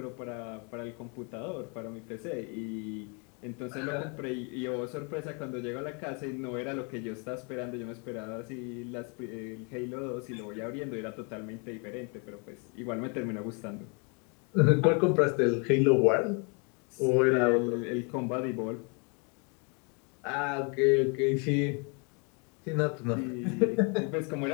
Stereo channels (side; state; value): right; quieter; 34.8 dB